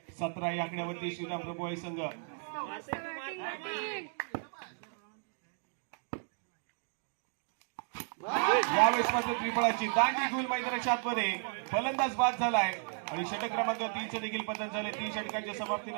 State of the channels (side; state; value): left; silent; 55 dB below the other